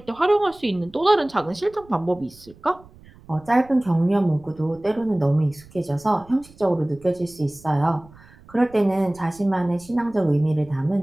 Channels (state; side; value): noise; right; rumble, 24 dB below the sound